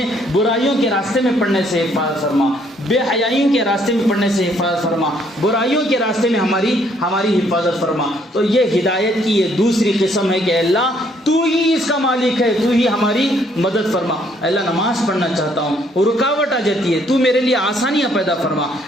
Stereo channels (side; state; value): both; normal; correlation 0.67